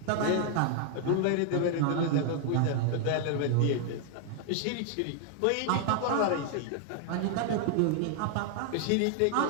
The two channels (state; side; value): different; both; correlation 0.00